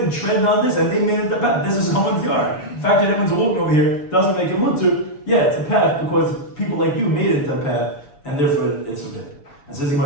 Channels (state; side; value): late; right; 7.0 ms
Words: treaded on this and they made it the path. This is someone's yard. The fact that everyone's walking over here doesn't make it mutter. Yeah, it's a path because people like you made it the path and therefore it's okay. And says